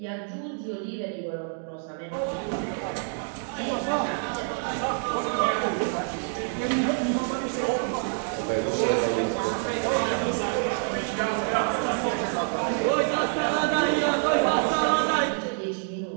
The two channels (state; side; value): silent; left; 60 dB below the other